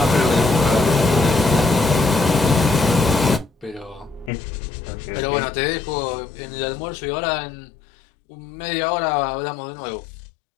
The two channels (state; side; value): drops out; right; at 4.3 s